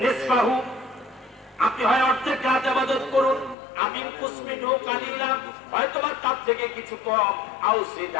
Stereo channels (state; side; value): drops out; right; at 3.6 s